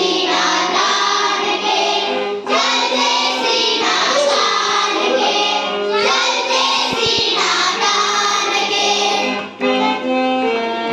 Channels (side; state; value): both; identical; correlation 1.00